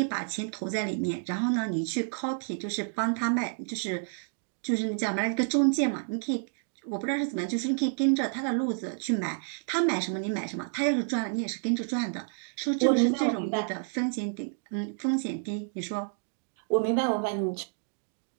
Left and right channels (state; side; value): silent; left; 58 dB below the other